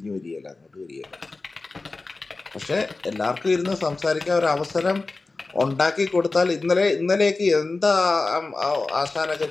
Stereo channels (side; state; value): right; quieter; 3.6 dB